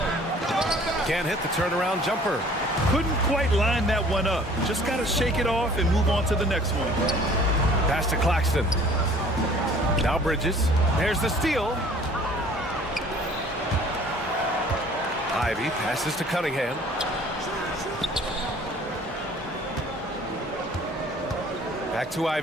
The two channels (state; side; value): normal; both; correlation 0.52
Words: Can't hit the turnaround jumper. Couldn't quite line that one up. Just got to shake it off and move on to the next one. Pass to Claxton. Now Bridges. There's the steal. Ivy passes to Cunningham. Back to